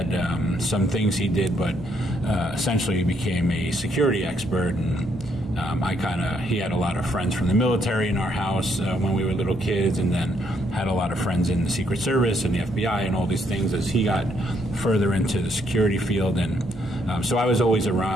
some things he did, but essentially he became a security expert, and he had a lot of friends from the military in our house when we were little kids, and then had a lot of friends in the Secret Service and the FBI and all these things as he got further into the security field. And So I was always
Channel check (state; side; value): normal; both; correlation 0.72